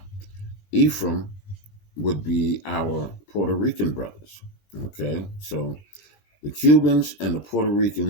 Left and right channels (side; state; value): right; late; 21 ms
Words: Ephraim would be our Puerto Rican brothers. Okay, so the Cubans and the Puerto